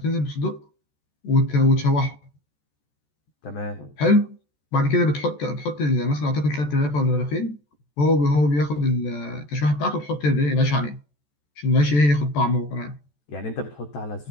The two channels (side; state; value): right; late; 14 ms